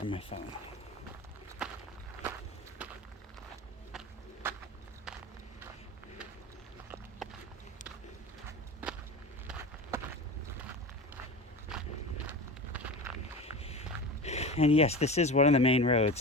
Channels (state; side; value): normal; both; correlation 0.30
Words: my phone. And yes, this is one of the main roads